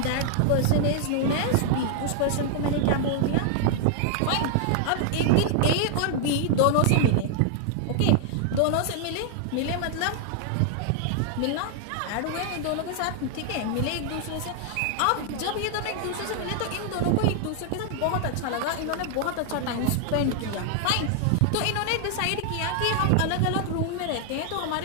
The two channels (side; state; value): both; different; correlation 0.00